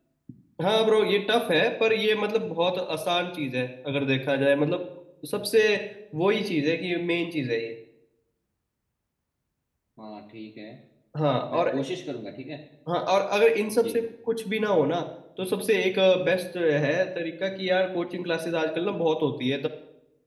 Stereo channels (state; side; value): identical; both; correlation 1.00